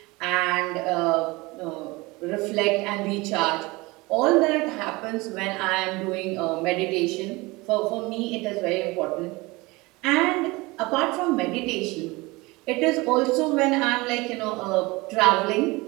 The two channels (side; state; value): left; quieter; 23.1 dB